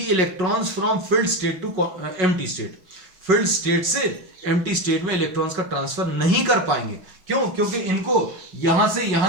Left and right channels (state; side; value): late; left; 5.4 ms